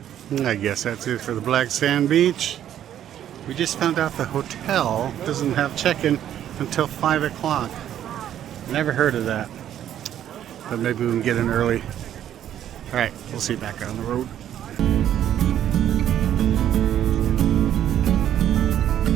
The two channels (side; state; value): left; quieter; 10.8 dB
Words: I guess that's it for the Black Sand Beach. We just found out the hotel doesn't have check-in until 5 o'clock. Never heard of that. But maybe we can get in early. Alright, we'll see you back on the road.